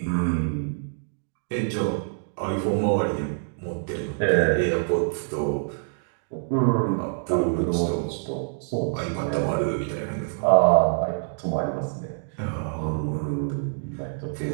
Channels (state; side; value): silent; left; digital silence